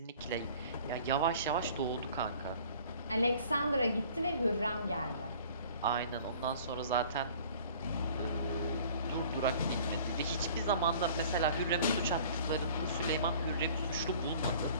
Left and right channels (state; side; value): inverted; both; correlation -0.50